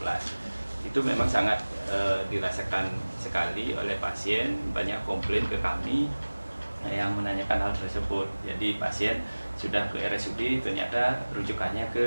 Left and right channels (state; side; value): inverted; both; correlation -1.00